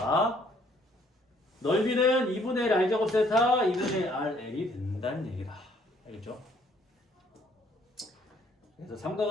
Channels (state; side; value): normal; both; correlation 0.63